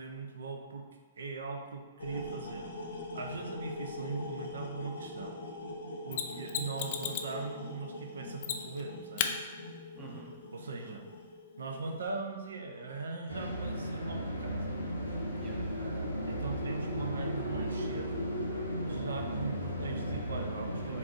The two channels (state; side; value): inverted; both; correlation -0.58